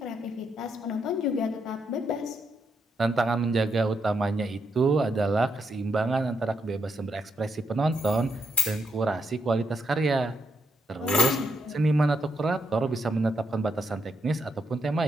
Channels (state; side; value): normal; both; correlation 0.79